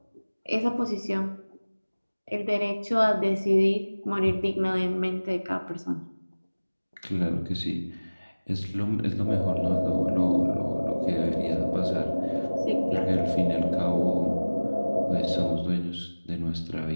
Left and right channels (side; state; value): both; inverted; correlation -1.00